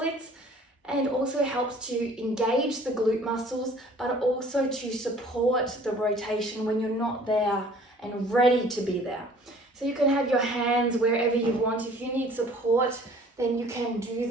and also helps to engage the glute muscles, but also to support the rotation when you're not there and ready to be there. So you can have your hands wherever you want. If you need support, then you can do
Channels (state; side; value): normal; both; correlation 0.52